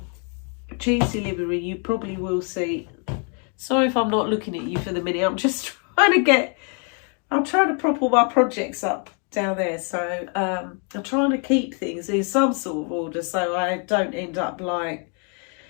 Cheese Delivery, you probably will see. Sorry if I'm not looking at you for the minute. I'm just trying to prop all my projects up down there. So I'm trying to keep things in some sort of order so I don't end up like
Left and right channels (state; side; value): quieter; right; 39.0 dB